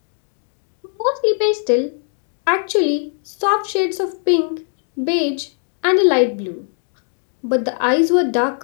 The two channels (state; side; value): silent; right; 56 dB below the other